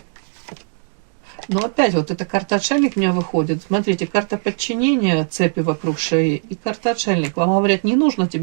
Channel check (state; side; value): silent; left; 59 dB below the other